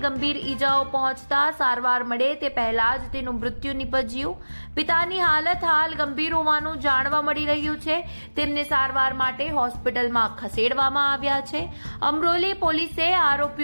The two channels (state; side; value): inverted; both; correlation -1.00